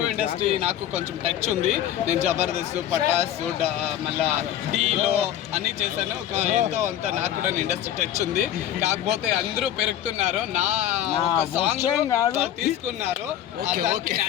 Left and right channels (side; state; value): right; quieter; 11.4 dB